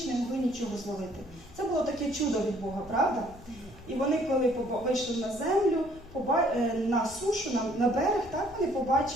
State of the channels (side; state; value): left; noise; rumble, 21 dB below the sound